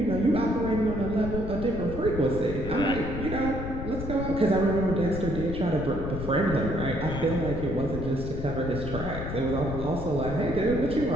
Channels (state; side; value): noise; left; rumble, 6 dB below the sound